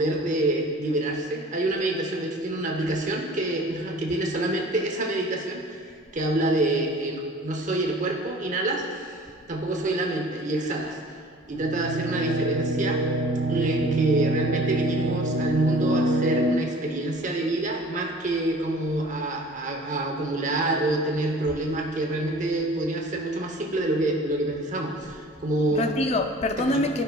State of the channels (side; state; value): both; normal; correlation 0.46